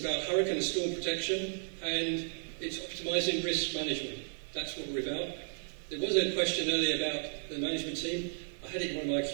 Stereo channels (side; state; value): left; silent; digital silence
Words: hurricane and storm protection, and it's optimising risk management. That's what we're about. There was a question earlier about the management team. I had it in one of my